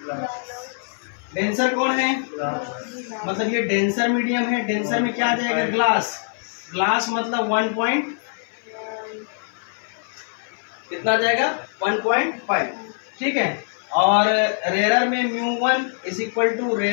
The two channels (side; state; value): right; silent; 56 dB below the other